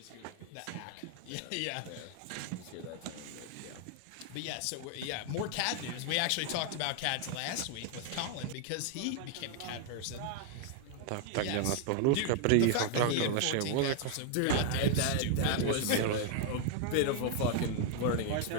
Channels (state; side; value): different; both; correlation 0.00